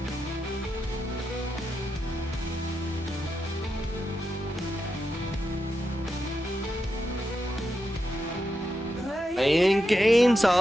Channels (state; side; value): normal; both; correlation 0.86